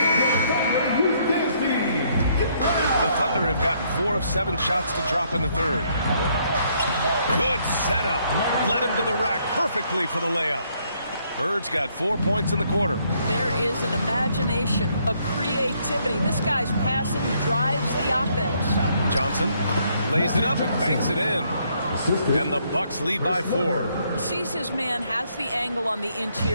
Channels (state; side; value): inverted; both; correlation -0.70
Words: The Thunder have gotten 4 of 7 shots to drop in the third. Good setup. Led him to the rack perfectly for the layup. Bird's got 4 points in the quarter. There is an imagination, a creativity. This guy's passing drives the offense. Johnson lays it up and banks it in. And the Bucks lead by 4. Sees his man, has the angle on the